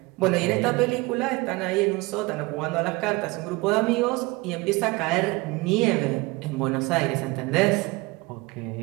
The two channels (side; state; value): left; quieter; 23.3 dB